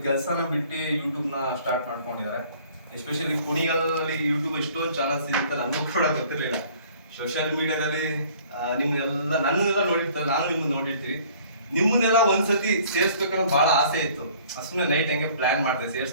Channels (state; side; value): inverted; both; correlation -0.54